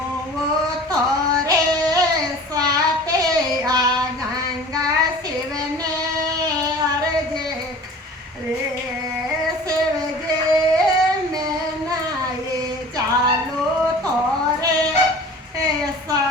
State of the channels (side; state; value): both; normal; correlation 0.43